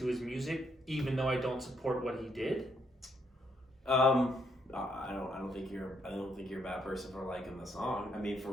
his music, even though I don't support what he did? I don't think you're a bad person for liking the song. I mean,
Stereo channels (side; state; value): both; normal; correlation 0.74